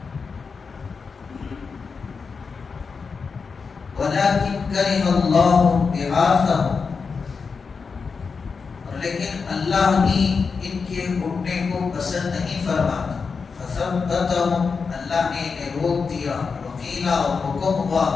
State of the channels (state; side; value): quieter; right; 5.1 dB